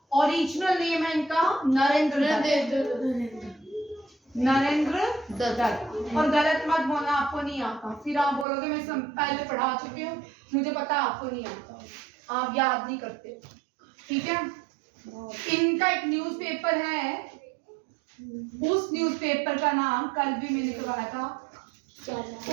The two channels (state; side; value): drops out; left; at 8.5 s